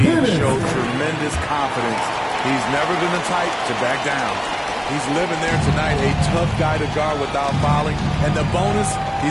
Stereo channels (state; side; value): identical; both; correlation 1.00